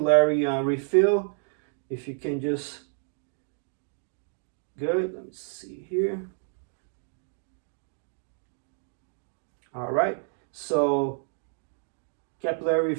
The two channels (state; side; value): silent; left; digital silence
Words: refill. If you can just, good, let me see here. All right, so capillary